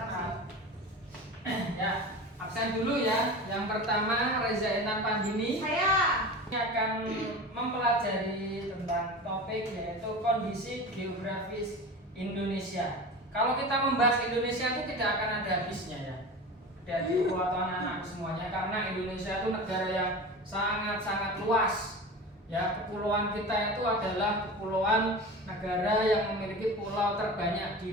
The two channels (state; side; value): normal; both; correlation 0.31